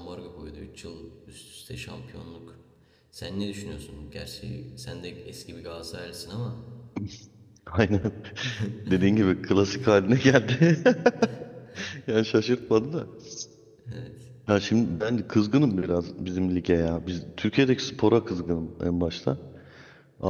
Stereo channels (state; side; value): identical; both; correlation 1.00